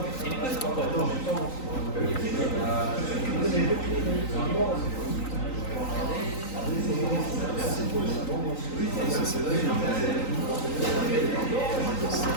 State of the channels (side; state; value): right; late; 3.9 ms